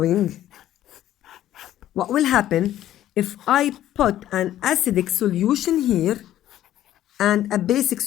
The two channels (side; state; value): right; quieter; 12.7 dB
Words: What will happen if I put an acidic solution here and a basic